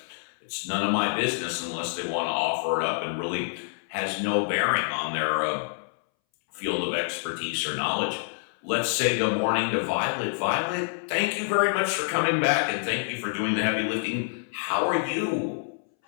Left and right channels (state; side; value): silent; right; 60 dB below the other